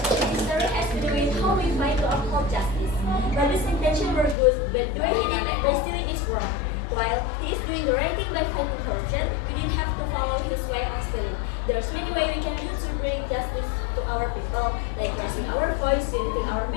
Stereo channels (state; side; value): drops out; right; at 4.4 s